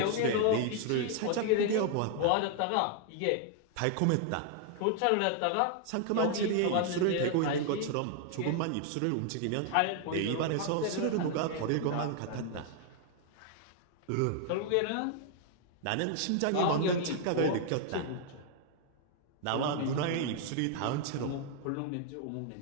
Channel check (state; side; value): different; both; correlation 0.00